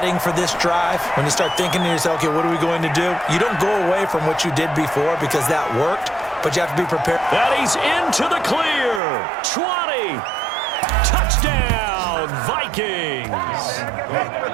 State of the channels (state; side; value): drops out; left; at 9.0 s